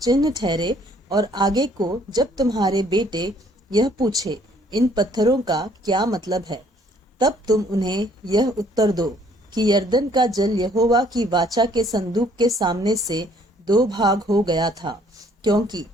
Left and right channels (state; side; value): normal; both; correlation 0.62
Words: ठहरे, और आगे को जब तुम्हारे बेटे यह पूछे, इन पत्थरों का क्या मतलब है, तब तुम उन्हें यह उत्तर दो कि यरदन का जल यहोवा की वाचा के संदूक के सामने से 2 भाग हो गया था, क्योंकि